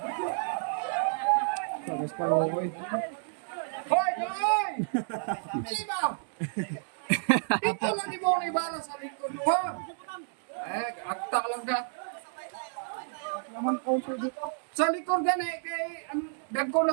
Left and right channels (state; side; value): silent; left; digital silence